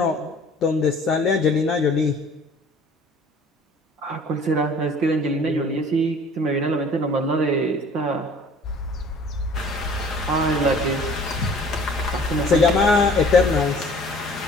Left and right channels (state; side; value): normal; both; correlation 0.51